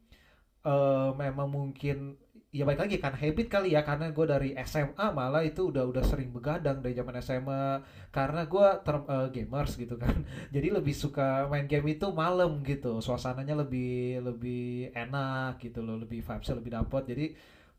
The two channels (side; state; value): both; identical; correlation 1.00